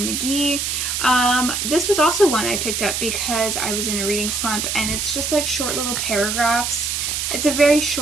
McGee. This was also one I picked up because I was in a reading slump, and it's just like short little paragraphs. It's a very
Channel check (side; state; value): right; noise; hiss, 1 dB below the sound